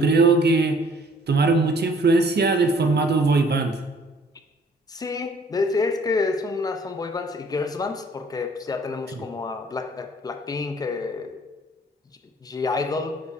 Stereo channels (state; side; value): normal; both; correlation 0.58